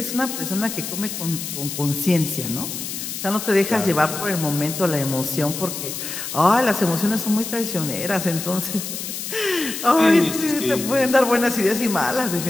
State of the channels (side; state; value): left; noise; hiss, 6 dB below the sound